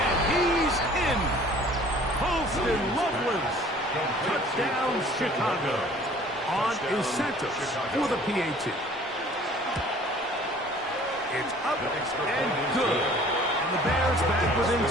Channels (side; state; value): both; normal; correlation 0.51